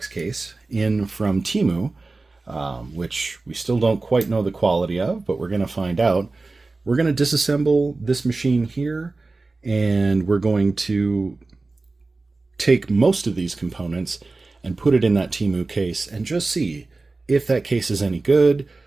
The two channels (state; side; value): quieter; left; 3.5 dB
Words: case in from Temu, which we still don't quite know the quality of, but we're going to find out. We're going to disassemble this machine here, and we're going to take most of these components and put it in that Temu case and just see if that case is any good.